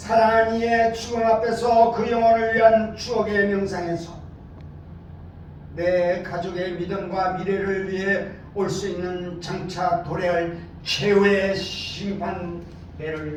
이의 죽음 앞에서 그 영혼을 위한 추억의 명상에서 내 가족의 믿음과 미래를 위해 올 수 있는 장차 도래할 최후의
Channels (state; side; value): identical; both; correlation 1.00